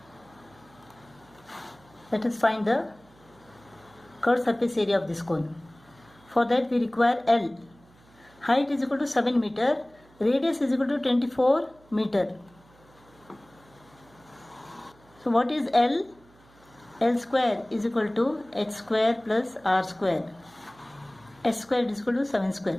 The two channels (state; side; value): noise; right; hum, 28 dB below the sound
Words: Let us find the curved surface area of this cone. For that we require L. Height is equal to 7 meter. Radius is equal to 24 meter. So what is L? L square is equal to h square plus r square. S square is equal to 7